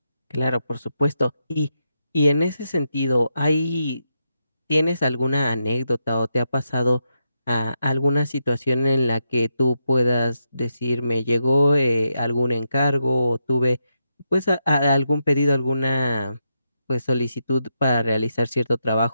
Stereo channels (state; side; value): inverted; both; correlation -0.84